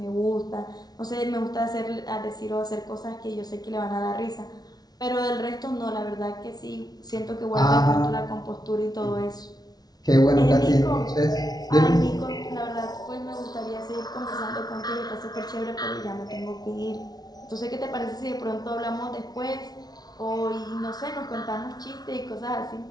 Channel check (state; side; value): late; right; 0.19 ms